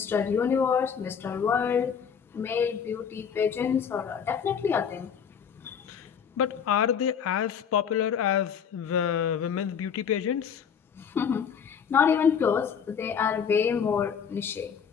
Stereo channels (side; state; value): right; quieter; 7.3 dB